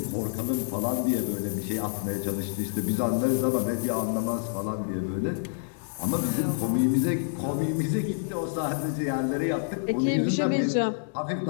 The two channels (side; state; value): right; silent; digital silence